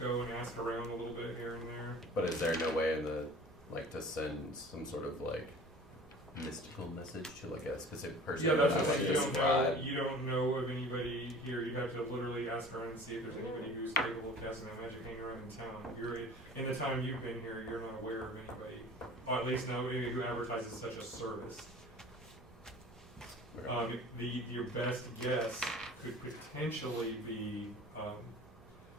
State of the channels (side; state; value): both; normal; correlation 0.43